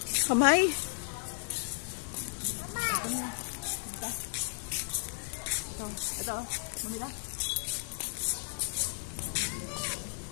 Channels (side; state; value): right; silent; digital silence